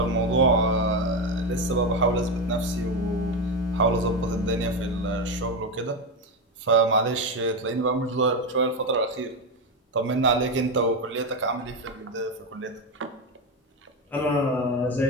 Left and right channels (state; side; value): normal; both; correlation 0.12